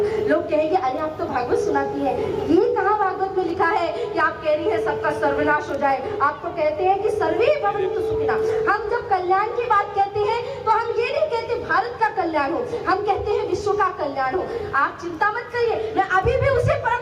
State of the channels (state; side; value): identical; both; correlation 1.00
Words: लोग कहेंगे अरे आप तो भागवत सुनाती है, ये कहाँ भागवत में लिखा है कि आप कह रही है सबका सर्वनाश हो जाए। आप तो कहते हैं कि सर्वे भवन्तु सुखिनः। हम जब कल्याण की बात कहते हैं तो हम ये नहीं कहते भारत का कल्याण हो, हम कहते हैं विश्व का कल्याण हो। आप चिंता मत करिए, मैं अभी भी उसी